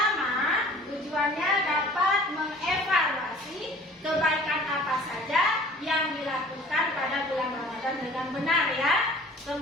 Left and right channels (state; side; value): normal; both; correlation 0.48